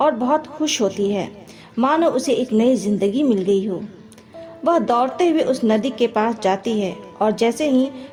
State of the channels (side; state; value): both; identical; correlation 1.00